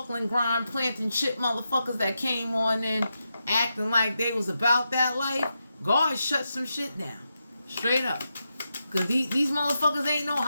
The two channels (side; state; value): both; inverted; correlation -0.87